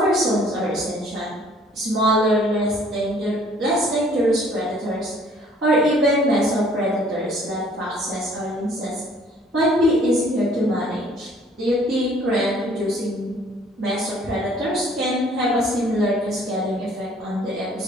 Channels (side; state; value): both; normal; correlation 0.57